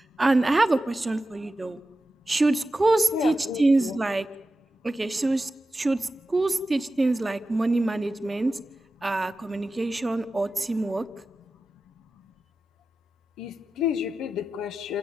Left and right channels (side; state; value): both; normal; correlation 0.93